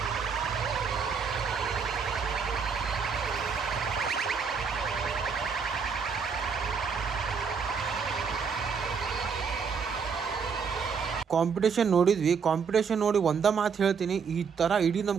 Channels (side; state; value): left; quieter; 6.0 dB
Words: ಕಾಂಪಿಟೇಷನ್ ನೋಡಿದ್ವಿ. ಕಾಂಪಿಟೇಷನ್ ನೋಡಿ ಒಂದ ಮಾತು ಹೇಳ್ತೀನಿ, ಈ ತರ ಇಡೀ